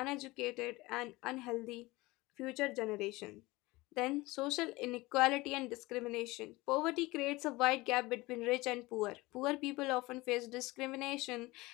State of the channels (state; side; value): quieter; right; 21.2 dB